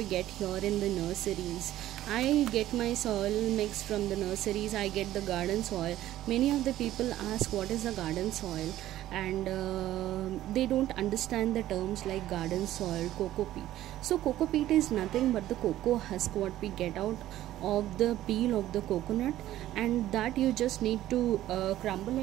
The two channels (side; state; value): left; quieter; 13.9 dB